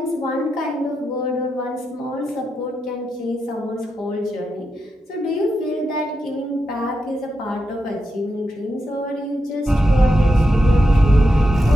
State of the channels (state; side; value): normal; both; correlation 0.86